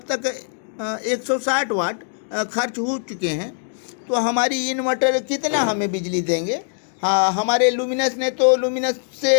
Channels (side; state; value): right; silent; digital silence